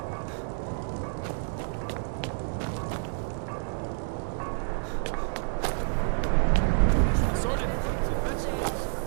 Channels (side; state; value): left; silent; 59 dB below the other